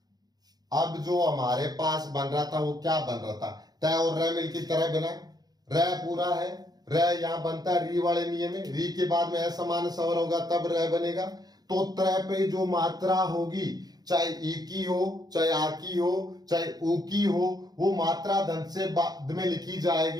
अब जो हमारे पास बन रहा था वो क्या बन रहा था, तय और र मिल की तरह बना, र पूरा है, र यहां बनता है री वाले नियम में, री के बाद में असमान स्वर होगा तब र बनेगा। तो त्रय पे जो मात्रा होगी, चाहे ई की हो, चाहे आ की हो, चाहे ऊ की हो, वो मात्रा धन से बाद में लिखी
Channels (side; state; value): left; late; 0.19 ms